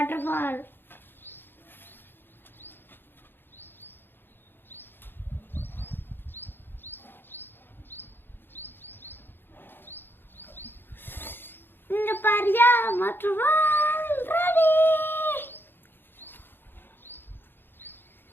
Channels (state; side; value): late; right; 0.10 ms